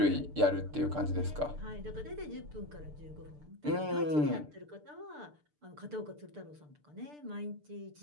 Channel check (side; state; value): left; late; 6.7 ms